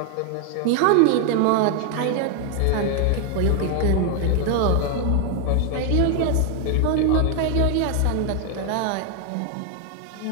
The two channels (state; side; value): different; both; correlation 0.01